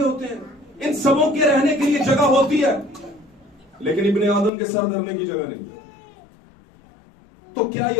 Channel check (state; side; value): drops out; right; at 4.5 s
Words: होते हैं, इन सबों के रहने के लिए जगह होती है, लेकिन इब्ने आदम के सर धरने की जगह नहीं। तो क्या